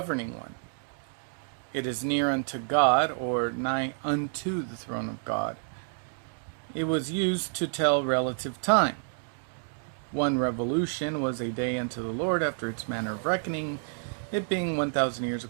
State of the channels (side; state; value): left; silent; digital silence